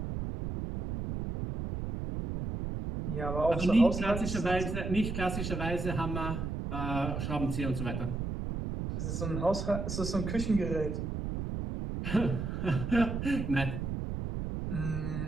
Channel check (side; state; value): right; noise; rumble, 3 dB below the sound